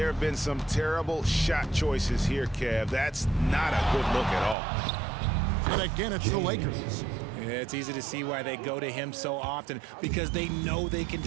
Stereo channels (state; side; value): drops out; left; at 4.5 s